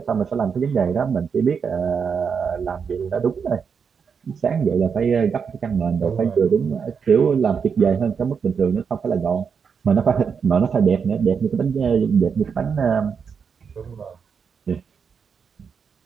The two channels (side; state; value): left; quieter; 6.3 dB